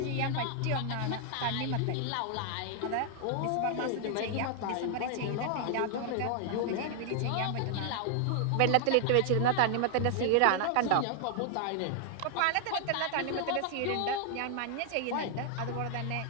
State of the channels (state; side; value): different; both; correlation 0.00